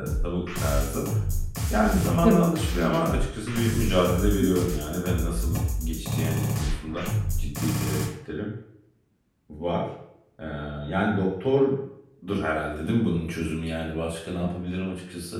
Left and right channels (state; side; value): identical; both; correlation 1.00